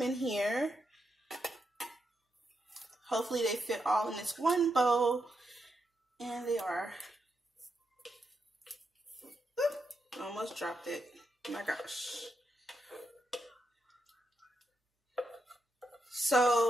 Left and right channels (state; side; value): normal; both; correlation 0.83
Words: in here. Hopefully they fit all in this one bowl. And they are. Oop, almost dropped it. Oh my gosh.